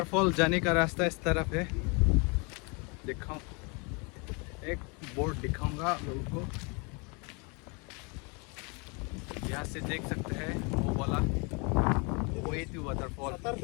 जाने का रास्ता इस तरफ है, दिखाऊं, एक बोर्ड दिखाऊंगा लोगों को। यहाँ से देख सकते हैं वो वाला वे टू वाटरफॉल। सतर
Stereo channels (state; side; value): quieter; right; 31.6 dB